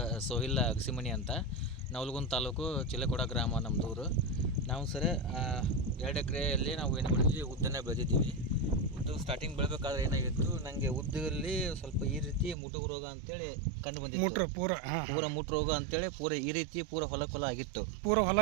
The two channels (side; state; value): left; drops out; at 12.6 s